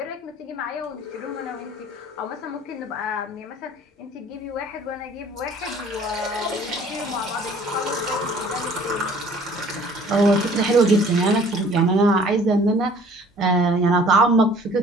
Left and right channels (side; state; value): both; normal; correlation 0.52